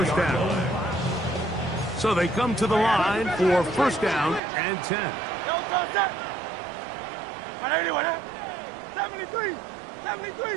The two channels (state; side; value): drops out; left; at 4.4 s